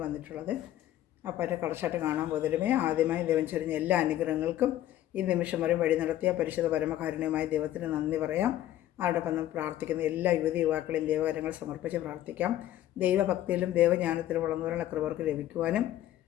വന്നിട്ടുള്ളത്. അപ്പോൾ അതിൻ്റെ കളർച്ചാട്ട് കാണാൻ പോകുന്നതിലുമേ ആദ്യമായി ദൈവം ചൊരിഞ്ഞ എല്ലാ അനുഗ്രഹങ്ങൾക്കും ഈ നിമിഷം വരെ വഴി നടത്തിയ പരിശുദ്ധ പരമകാരുണ്യമായ ദൈവത്തിന് നന്ദി പറയാം. അതോടൊപ്പം നമ്മൾ പ്രാർത്ഥിക്കുന്ന എല്ലാ യുവതി യുവാക്കളെയും ദൈവകരങ്ങൾ സമർപ്പിച്ച് പ്രാർത്ഥിക്കാം. ദൈവഭക്തിയിലും ദൈവജ്ഞാനത്തിലും വളർന്നവരുടെ കൃപർക്ക് ലഭിക്കുവാനും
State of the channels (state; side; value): quieter; right; 13.2 dB